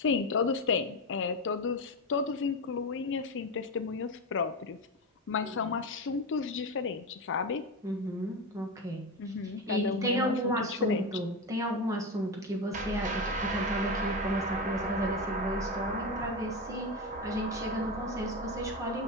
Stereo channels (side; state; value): both; normal; correlation 0.17